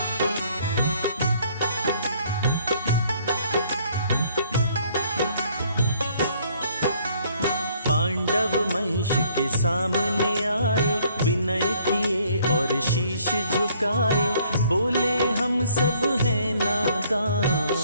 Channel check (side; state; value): both; inverted; correlation -0.63